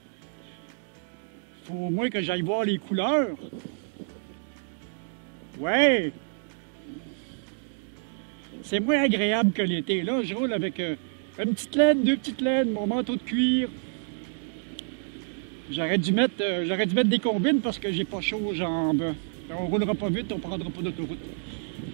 Faut au moins que j'aille voir les couleurs. Ouais! C'est moins agréable que l'été. Là, je roule avec une petite laine, 2 petites laines, mon manteau de cuir. J'aurais dû mettre des combines parce que j'ai pas chaud aux jambes. On roulera pas vite, on prendra pas d'autoroute.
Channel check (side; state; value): left; silent; digital silence